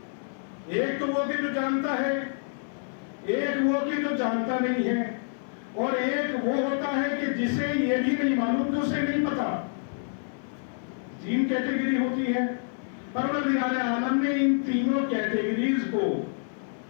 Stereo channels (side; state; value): right; silent; 60 dB below the other